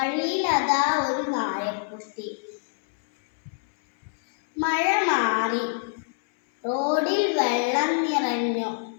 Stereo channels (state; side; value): silent; right; 62 dB below the other